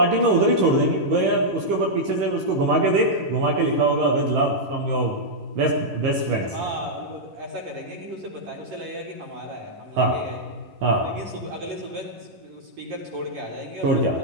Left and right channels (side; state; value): left; late; 11 ms